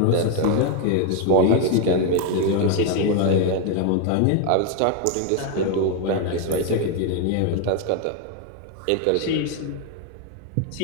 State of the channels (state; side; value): different; both; correlation 0.01